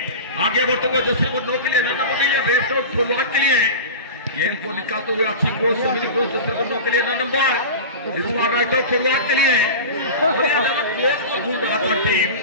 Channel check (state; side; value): inverted; both; correlation -0.30